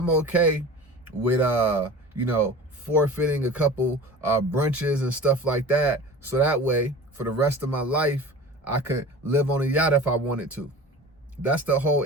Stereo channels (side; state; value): both; normal; correlation 0.37